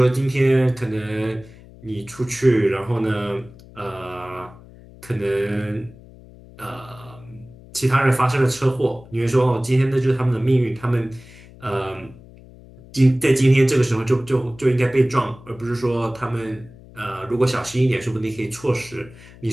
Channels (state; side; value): noise; left; hum, 21 dB below the sound